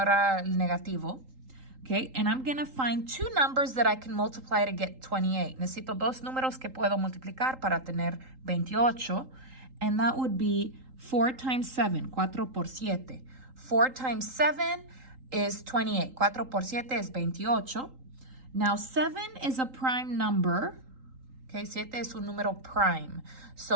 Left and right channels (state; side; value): late; left; 3.8 ms